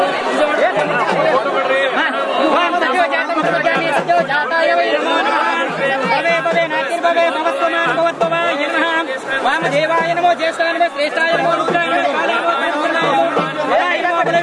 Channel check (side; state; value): both; identical; correlation 1.00